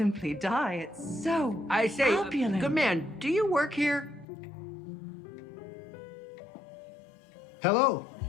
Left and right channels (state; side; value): drops out; right; at 4.2 s